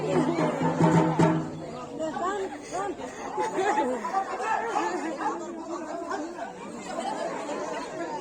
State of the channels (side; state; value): both; identical; correlation 1.00